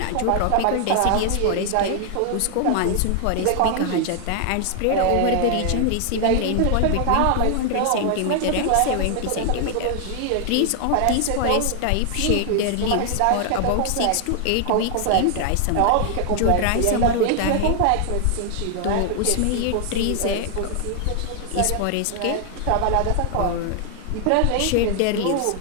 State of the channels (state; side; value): different; both; correlation 0.00